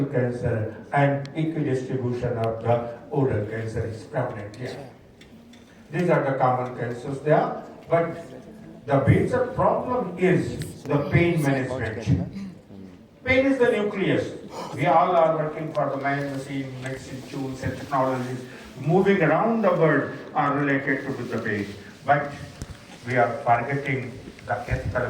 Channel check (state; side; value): identical; both; correlation 1.00